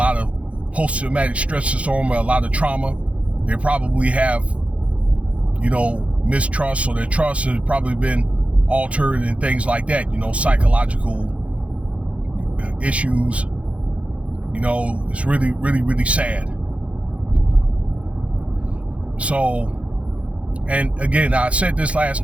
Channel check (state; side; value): late; left; 0.063 ms